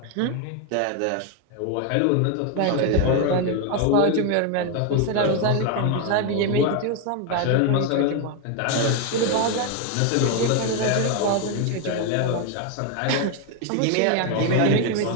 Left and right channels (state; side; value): different; both; correlation 0.01